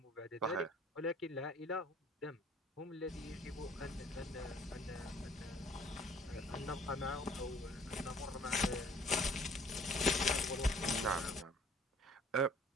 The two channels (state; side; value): normal; both; correlation 0.55